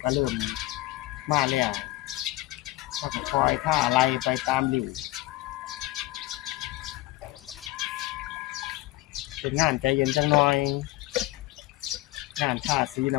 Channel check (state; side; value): quieter; right; 18.0 dB